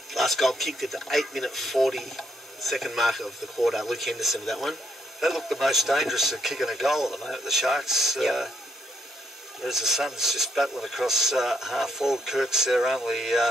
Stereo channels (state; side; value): normal; both; correlation 0.75